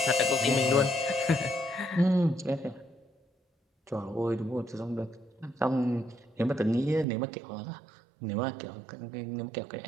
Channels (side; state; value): left; drops out; at 7.1 s